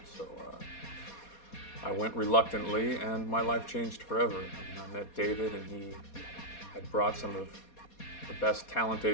so I went reluctantly, and my life changed forever. I mean, I met David, and he had brought some of the best talent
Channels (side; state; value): right; late; 4.2 ms